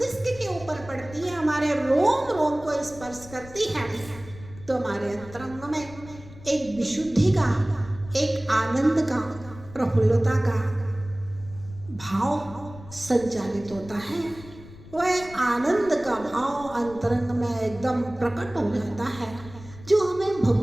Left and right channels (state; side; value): noise; left; rumble, 18 dB below the sound